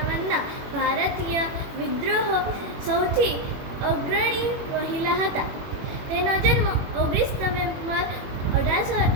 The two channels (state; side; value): late; left; 21 ms